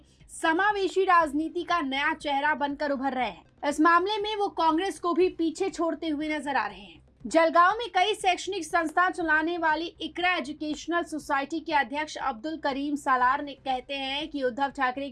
समावेशी राजनीति का नया चेहरा बनकर उभर रहे हैं। इस मामले में वो कांग्रेस को भी पीछे छोड़ते हुए नजर आ रहे हैं। जलगांव में कई शैक्षणिक संस्था चलाने वाली इकरा एजुकेशनल सोसाइटी के अध्यक्ष अब्दुल करीम सालार ने कहते हैं कि उद्धव ठाकरे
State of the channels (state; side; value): identical; both; correlation 1.00